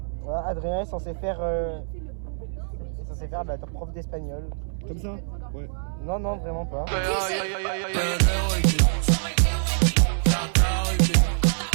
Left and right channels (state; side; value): silent; left; 59 dB below the other